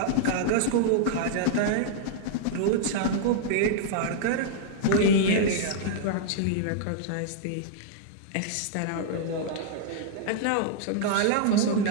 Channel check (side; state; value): both; different; correlation -0.01